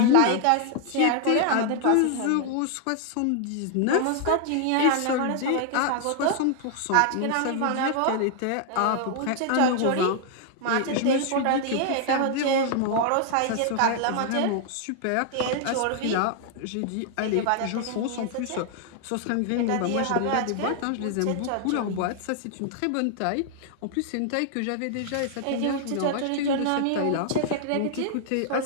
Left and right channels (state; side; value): different; both; correlation 0.00